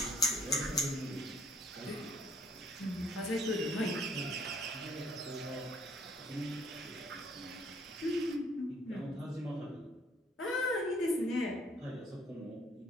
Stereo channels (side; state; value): both; normal; correlation 0.62